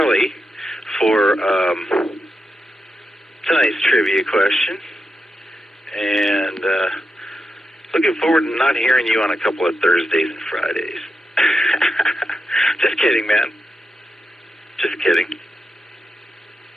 for tonight's trivia question. And looking forward to not hearing you on a couple of Thursdays and Fridays. Just kidding, man. Just kidding.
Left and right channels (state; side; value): normal; both; correlation 0.87